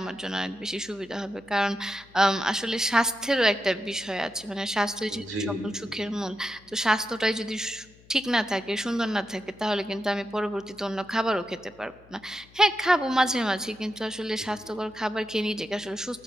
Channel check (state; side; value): noise; left; hum, 26 dB below the sound